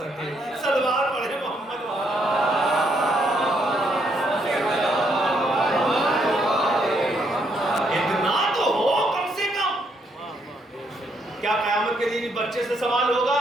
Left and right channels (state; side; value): normal; both; correlation 0.73